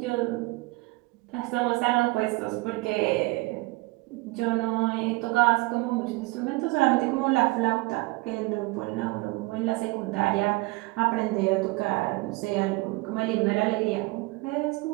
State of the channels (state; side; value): quieter; left; 23.1 dB